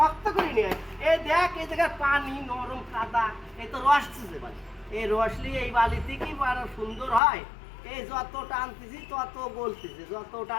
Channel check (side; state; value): right; drops out; at 7.2 s